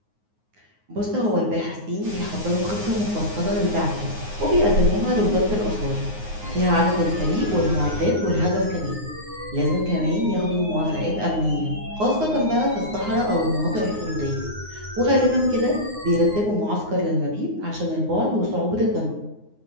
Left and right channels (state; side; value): late; left; 9.6 ms